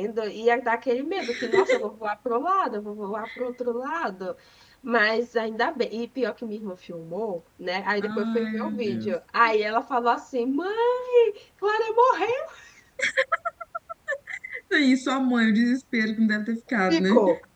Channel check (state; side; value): identical; both; correlation 1.00